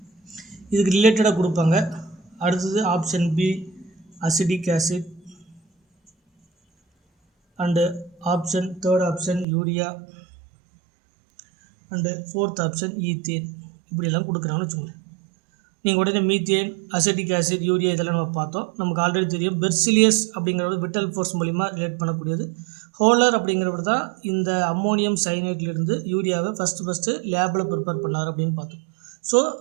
இதுக்கு ரிலேட்டடாக கொடுப்பாங்க. அடுத்தது option B acidic acid, and third option urea, and fourth option ethane. இப்படியெல்லாம் கொடுக்குறாங்கன்னு வச்சுக்கோங்க. நீங்கள் உடனே மீத்தேன், அசிட்டிக் ஆசிட், யூரியா இதெல்லாம் நம்ம பார்த்தோம். நமக்கு ஆல்ரெடி தெரியும் பெர்சிலியஸ் அப்படிங்கிறது விட்டல் ஃபோர்ஸ் மூலிமா ரிலேட் பண்ணக்கூடியது. ஹோலர் அப்படிங்கிறவர் தான் இந்த அம்மோனியம் சைனேட்லேருந்து யூரியாவை ஃபஸ்ட்டு லேபில் ப்ரிப்பேர் பண்ணார் அப்படின்னு பார்த்தோம். ஸோ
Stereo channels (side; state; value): left; drops out; at 9.5 s